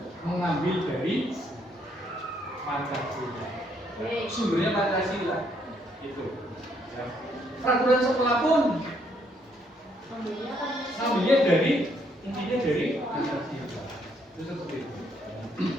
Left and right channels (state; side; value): normal; both; correlation 0.70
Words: mengambil dari Pancasila. Sumbernya Pancasila itu. Ya. Peraturan sekolah pun ngambilnya dari intinya dari Pancasila. Itu seperti itu.